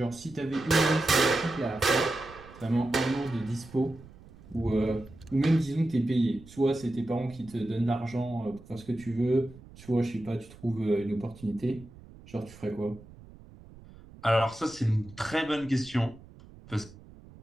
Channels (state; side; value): noise; right; rumble, 20 dB below the sound